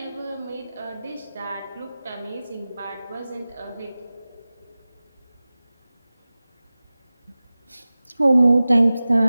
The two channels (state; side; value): inverted; both; correlation -0.97